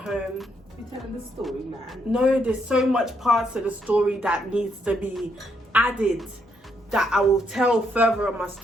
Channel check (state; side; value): normal; both; correlation 0.76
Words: You're telling the story, man. No, there's so much parts of the story that needs to be added that I will tell further on my